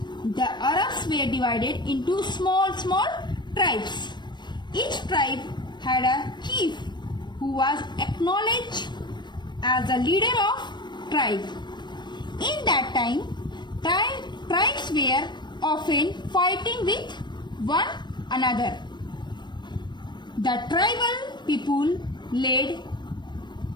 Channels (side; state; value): right; late; 0.21 ms